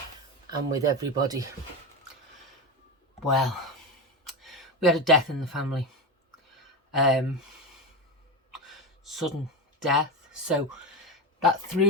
and with everybody? Well, we had a death in the family, sudden death, so that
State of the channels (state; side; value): normal; both; correlation 0.17